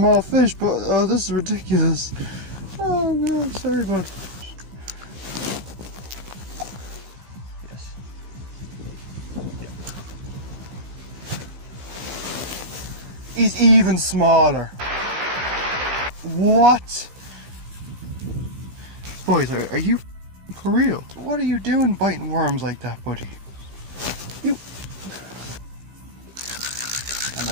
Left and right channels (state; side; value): late; left; 15 ms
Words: fish, but oh, this is ridiculous. Oh God, sorry bud. Yes. Yeah. He's even smaller. What? Boys, are you for real? What are you doing biting worms like that, buddy? You. I'm